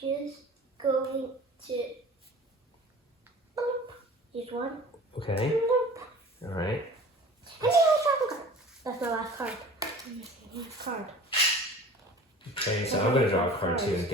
just going to use one. Okay, all right. That's my last card. Last card. Okay, so I'm gonna draw a card too and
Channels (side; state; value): both; normal; correlation 0.42